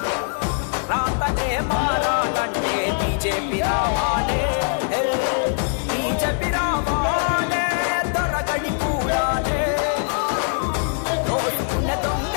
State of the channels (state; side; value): silent; right; 64 dB below the other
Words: రాతనే మారాలంటే బీజేపీ రావాలే, బీజేపీ రావాలే, దొరగడి కూడాలే. దోచుకున్న